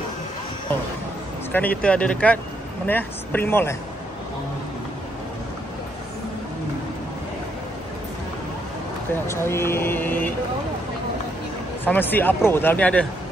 Sekarang ni kita ada dekat mana ya? Spring Mall Kita nak cari Farmasi Apro, dalam ni ada.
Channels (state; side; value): normal; both; correlation 0.76